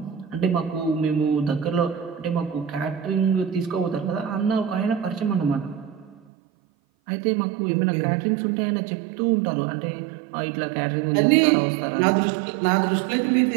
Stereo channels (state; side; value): drops out; left; at 6.2 s